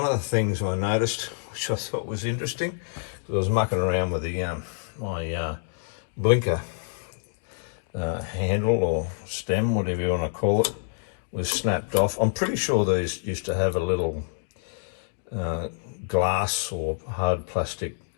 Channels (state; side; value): silent; right; digital silence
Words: of the things I noticed, which I thought was interesting, because I was mucking around with the my blinker handle or stem, whatever you want to call it, was snapped off. I'm pretty sure these used to have a little glass or hard plastic